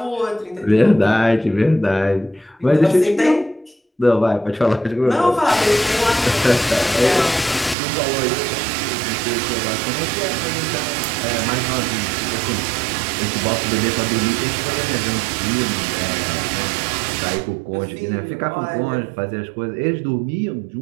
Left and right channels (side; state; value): left; drops out; at 7.8 s